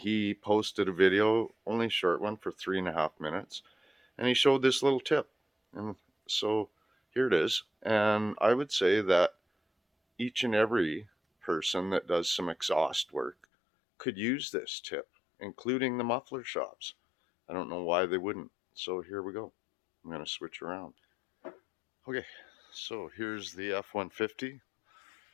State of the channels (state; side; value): drops out; right; at 13.5 s